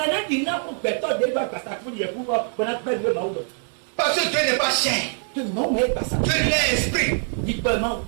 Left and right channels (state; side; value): silent; left; 55 dB below the other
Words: Parce que Dieu n'est pas chair. Dieu est esprit.